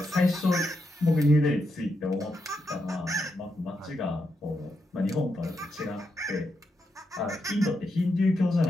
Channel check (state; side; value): normal; both; correlation 0.83